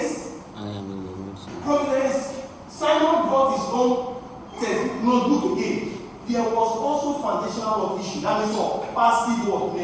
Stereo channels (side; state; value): both; identical; correlation 1.00